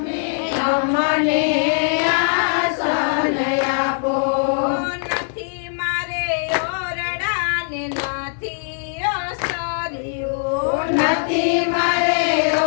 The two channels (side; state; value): right; silent; digital silence